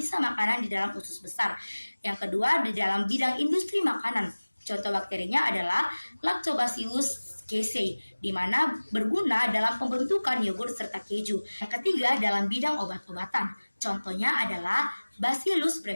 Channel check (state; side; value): inverted; both; correlation -1.00